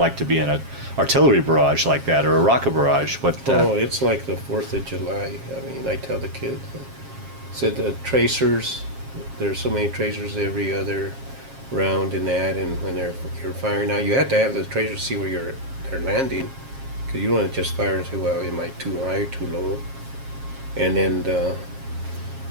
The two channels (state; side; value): late; left; 7.4 ms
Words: to be in an artillery barrage like that, or a rocket barrage. It's like the 4th of July. I mean, I tell the kids, said the tracers, there's so many tracers every other round in that, and when you're firing out, you have to have the tracers see where they're landing, because you don't want to just fire and say, well, am I too high, too low? And then